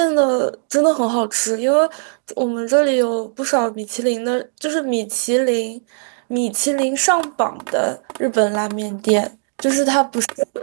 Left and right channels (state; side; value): silent; left; digital silence